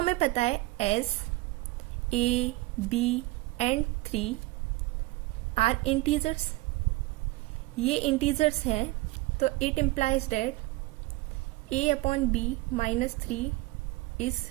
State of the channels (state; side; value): quieter; left; 20.3 dB